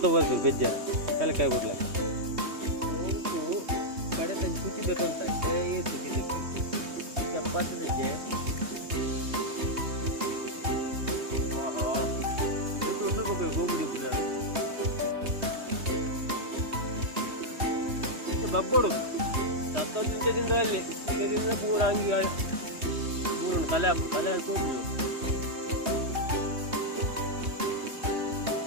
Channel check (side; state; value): left; late; 3.2 ms